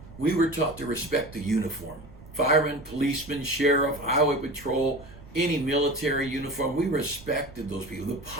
we were taught to respect the uniform. Fireman, policeman, sheriff, highway patrol, any military uniform, we respected those people. The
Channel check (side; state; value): right; noise; rumble, 19 dB below the sound